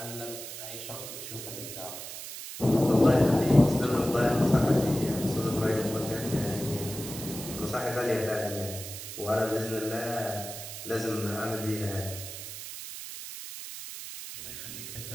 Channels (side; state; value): right; noise; hiss, 9 dB below the sound